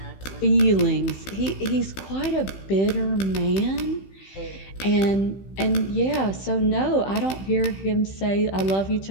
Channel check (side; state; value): right; late; 15 ms